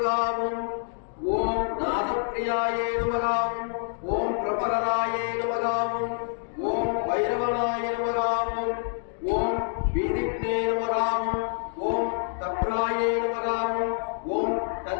ஓம் நாதப்பிரியாய நமகாவும் ஓம் பிரபகராய நமகாவும் ஓம் வைரவனாய நமகாவும் ஓம் வீதிக்னே நமகாவும் ஓம் தப்ராய நமகாவும் ஓம்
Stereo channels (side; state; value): right; silent; digital silence